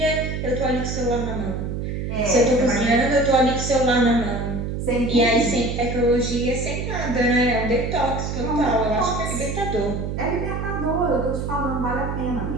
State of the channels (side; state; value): right; noise; hum, 4 dB below the sound